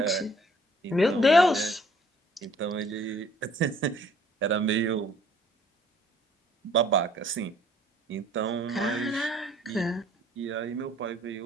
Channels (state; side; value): normal; both; correlation 0.58